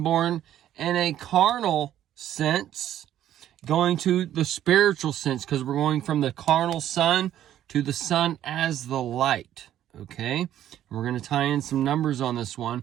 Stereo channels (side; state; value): left; quieter; 11.7 dB